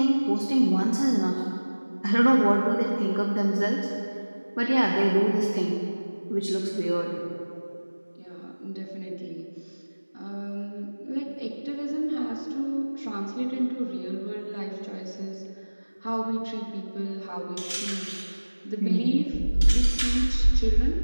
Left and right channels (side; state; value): both; inverted; correlation -1.00